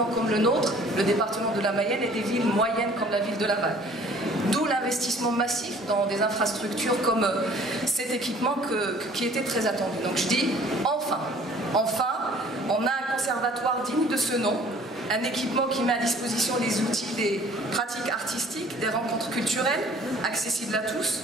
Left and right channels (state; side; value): normal; both; correlation 0.53